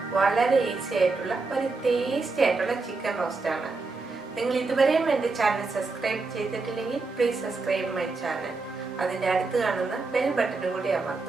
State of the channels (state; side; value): quieter; left; 3.9 dB